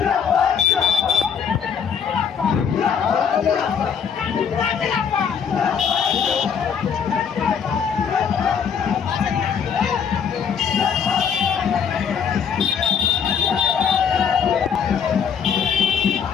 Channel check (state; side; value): quieter; right; 7.3 dB